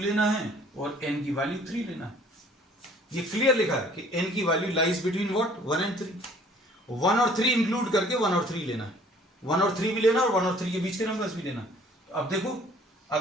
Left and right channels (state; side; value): normal; both; correlation 0.54